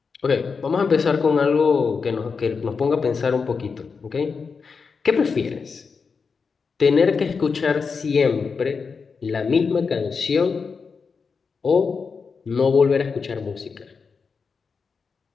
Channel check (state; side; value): quieter; right; 5.3 dB